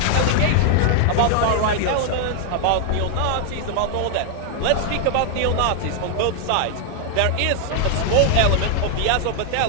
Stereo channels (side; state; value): both; different; correlation 0.00